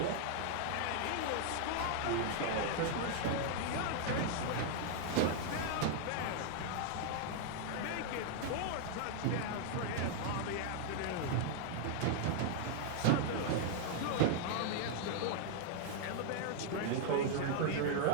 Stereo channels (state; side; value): different; both; correlation 0.00